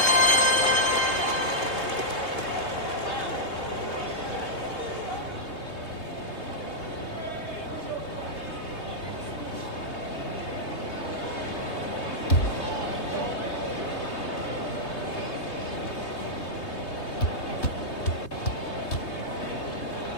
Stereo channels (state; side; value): late; right; 3.2 ms